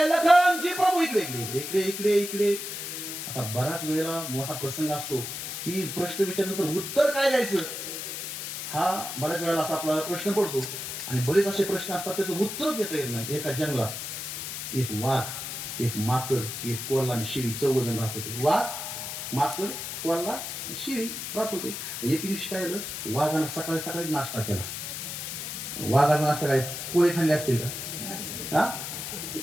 लखन जी प्रभू इकडे इकडे इकडे इकडे इकडे. आता बराच वेळेला मोठा प्रसंग असतो की प्रश्न विचारल्यानंतर उत्तर काय द्यायचं हा बऱ्याच वेळेला असा आपला प्रश्न पडतो. आणि बरेच असे प्रश्न असतात त्याचं उत्तर देता येत नाही. एका जंगलात एक वाघ, एक माकड, एक कोल्हा आणि शिळी 14 जण राहत होते. वाघ, माकड, कोल्हा, शिळी राहत होते. एक दिवशी काय झालं, वाघानं सकाळी सकाळी नाश्ता केला. वाघाचा नाश्ता काय, पोहे खाल्ले असतील का?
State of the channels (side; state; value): left; noise; hiss, 6 dB below the sound